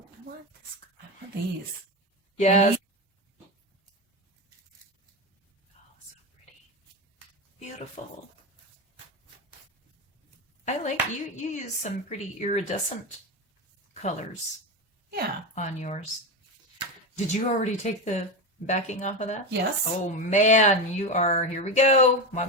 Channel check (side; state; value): both; normal; correlation 0.17